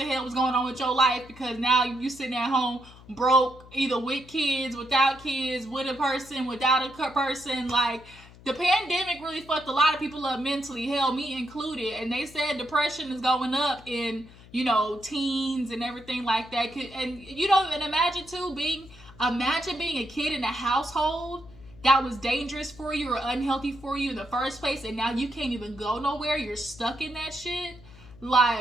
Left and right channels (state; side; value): noise; left; hum, 21 dB below the sound